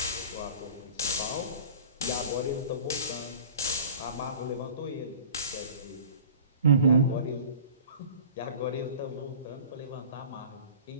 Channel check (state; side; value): inverted; both; correlation -0.42